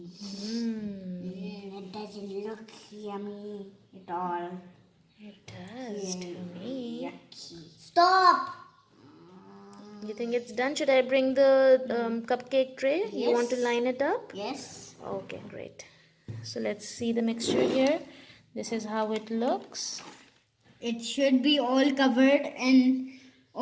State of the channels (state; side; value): identical; both; correlation 1.00